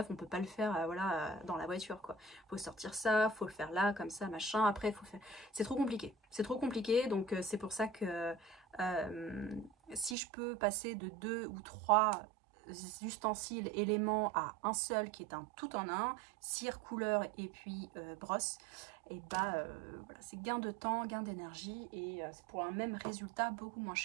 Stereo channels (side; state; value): left; drops out; at 10.2 s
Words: on peut pas le faire voilà, dans la voiture, quoi. Faut sortir ça, faut le faire là, comme ça, machin, après il faut faire... C'est trop compliqué, donc c'est pour ça que si je peux passer de 2 ou 3 ustensiles, éléments à un seul qui est un tout en un, cire, couleur et puis brosse, et bah voilà, c'est gain de temps, gain d'énergie, et c'est pour un même résultat beaucoup moins